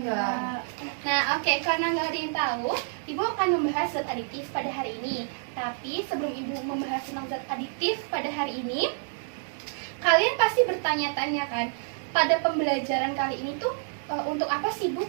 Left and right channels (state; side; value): silent; left; 59 dB below the other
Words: Nah, oke, karena nggak ada yang tahu, Ibu akan membahas zat aditif pada hari ini. Tapi sebelum Ibu membahas tentang zat aditif pada hari ini, kalian pasti bertanya-tanya kan, pada pembelajaran kali ini tuh untuk apa sih Bu